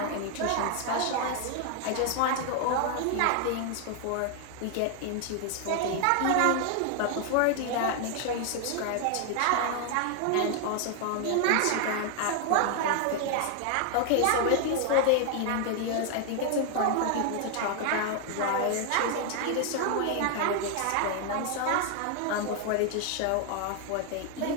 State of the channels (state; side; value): different; both; correlation 0.00